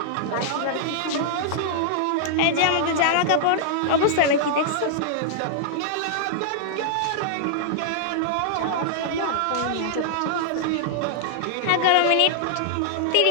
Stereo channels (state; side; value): different; both; correlation -0.01